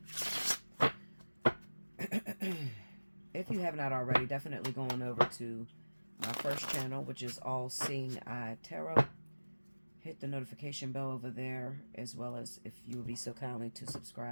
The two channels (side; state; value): both; inverted; correlation -1.00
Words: If you have not already, definitely go on over to my first channel, which is Allseeingeyetarot. Hit the notification bell over there, as well as if you would be so kindly to